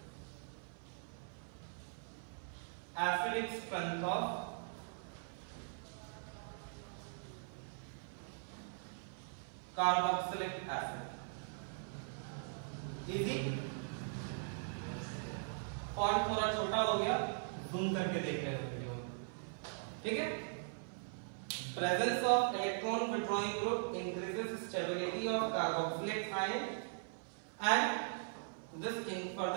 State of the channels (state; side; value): silent; left; 51 dB below the other